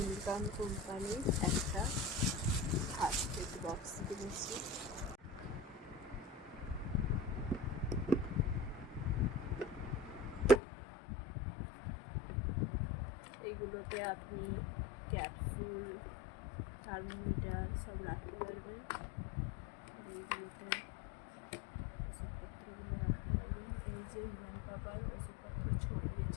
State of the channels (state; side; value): drops out; right; at 10.6 s